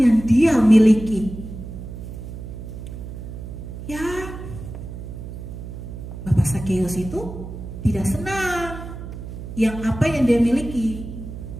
dia miliki? Ya, Bapak Sakeus itu tidak senang yang apa yang dia miliki.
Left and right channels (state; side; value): noise; right; hum, 10 dB below the sound